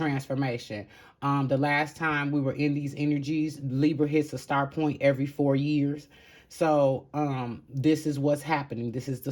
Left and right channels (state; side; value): identical; both; correlation 1.00